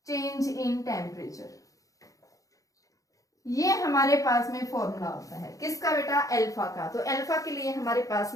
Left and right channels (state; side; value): late; right; 0.16 ms